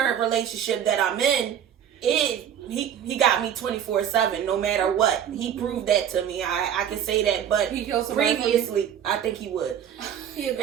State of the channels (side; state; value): left; quieter; 9.4 dB